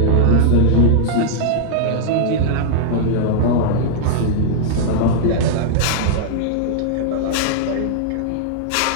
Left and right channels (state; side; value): different; both; correlation -0.01